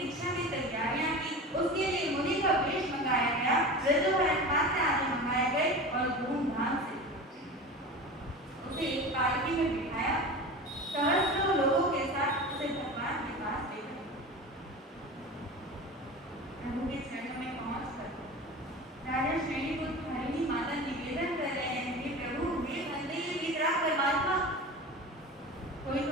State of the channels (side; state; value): both; normal; correlation 0.32